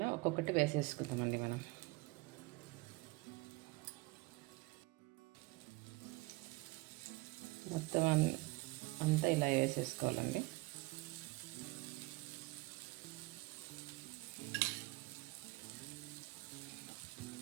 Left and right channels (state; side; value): quieter; left; 23.6 dB